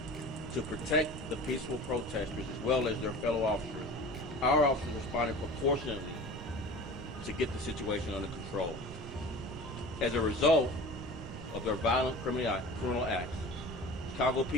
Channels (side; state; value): both; normal; correlation 0.38